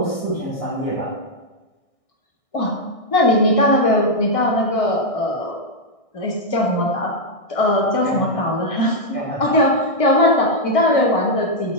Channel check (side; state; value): right; late; 1.6 ms